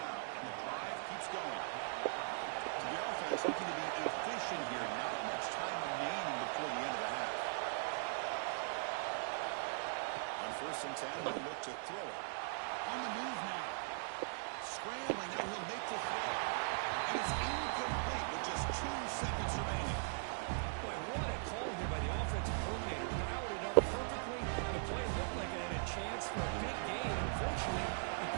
and the drive keeps going. So the offense looking to be efficient here. Not much time remaining before the end of the half. On first and 10, they'll look to throw it. On the move now. Scrambling, now he'll make the throw. And it's incomplete with just 2 seconds remaining. Boy, what a call here by the offensive coordinator. Dialed it up perfectly. The play looked like it had a chance for a big gain. Unfortunately, the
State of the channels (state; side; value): silent; left; digital silence